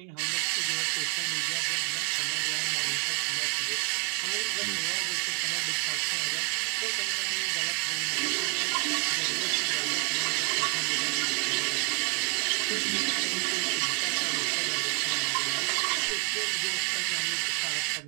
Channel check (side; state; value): left; quieter; 35.2 dB